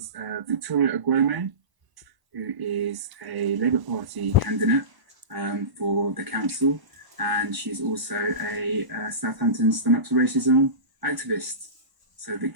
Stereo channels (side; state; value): left; late; 1.0 ms